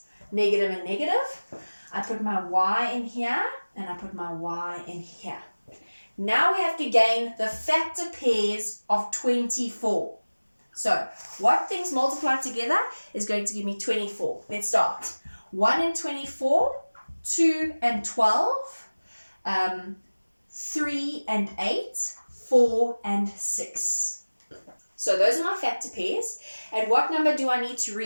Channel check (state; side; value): inverted; both; correlation -1.00